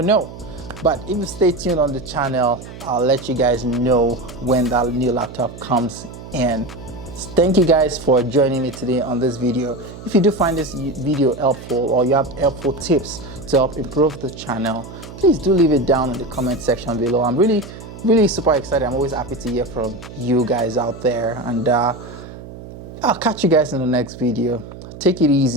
know. But if you stay tuned on the channel, I'll let you guys know when that new laptop comes in. Thank you guys for joining me today on this video. If you do find this video helpful, or you have helpful tips to help improve the channel, please do leave it down in the comment section below. I'm really super excited. I'm always happy to hear from you guys out there, and I'll catch you guys in the next video. Take it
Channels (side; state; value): right; noise; hum, 14 dB below the sound